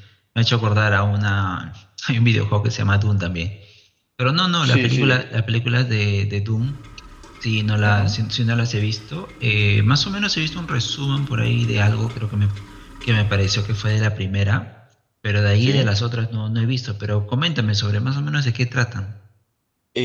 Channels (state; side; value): identical; both; correlation 1.00